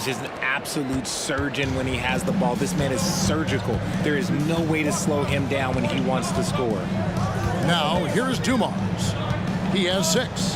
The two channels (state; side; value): identical; both; correlation 1.00